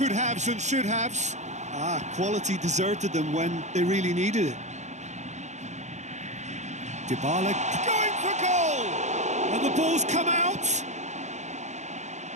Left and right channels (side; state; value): left; late; 0.34 ms